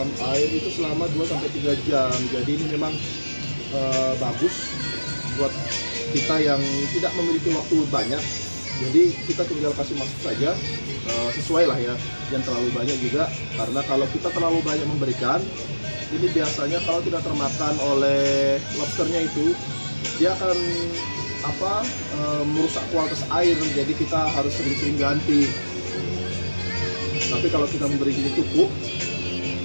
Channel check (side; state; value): both; inverted; correlation -1.00